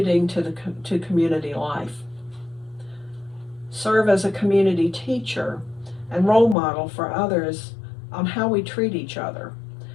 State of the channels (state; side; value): drops out; right; at 6.6 s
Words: to community life. Serve as a community teacher and role model for others on how we treat each other.